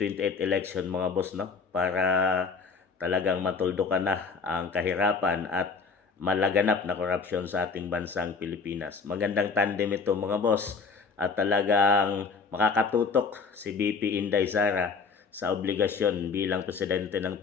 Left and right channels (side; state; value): right; quieter; 5.1 dB